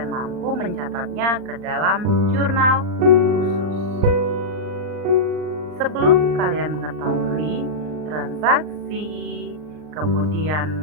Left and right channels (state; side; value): late; left; 39 ms